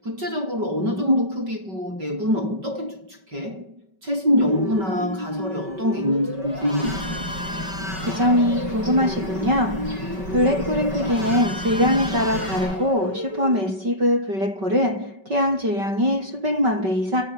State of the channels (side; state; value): left; late; 5.2 ms